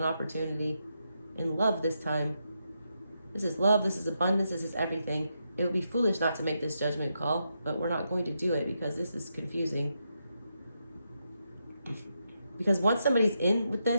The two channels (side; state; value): both; inverted; correlation -0.83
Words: opportunity. In love this time. This is love. This is abundance. This is everything. It would be foolish not to make this judgment call, but we're not going to do it because this is confusing. Because once somebody's in with